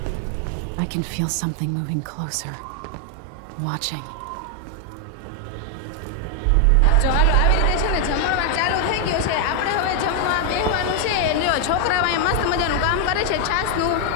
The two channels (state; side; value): different; both; correlation 0.00